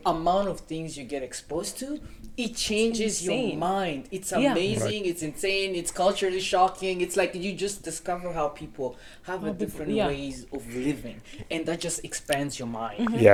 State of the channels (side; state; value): both; identical; correlation 1.00